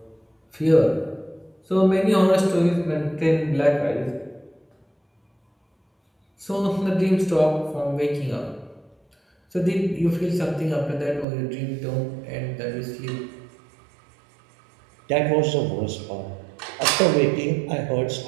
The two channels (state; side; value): drops out; left; at 11.2 s